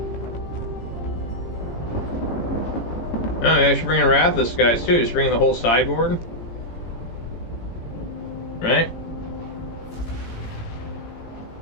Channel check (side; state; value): right; late; 18 ms